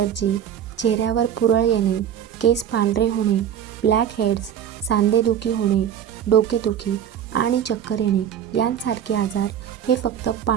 चेहऱ्यावर पुरळ येणे, केस पांढरे होणे, ब्लॅक हेड्स, सांधेदुखी होणे, डोकेदुखी आणि चक्कर येणे यांसारखे आजार हे फक्त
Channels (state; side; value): quieter; left; 9.4 dB